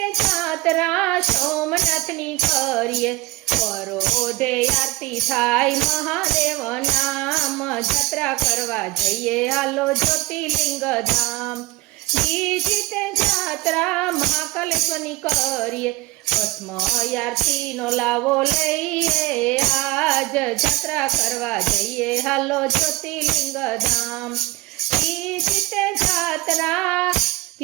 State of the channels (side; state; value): left; quieter; 20.4 dB